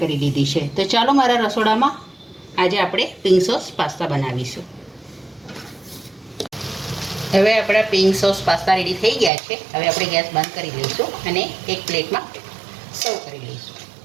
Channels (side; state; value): left; drops out; at 9.3 s